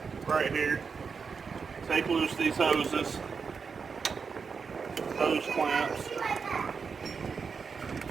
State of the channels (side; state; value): left; quieter; 5.5 dB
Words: right here. Take loose these hoses. hose clamps.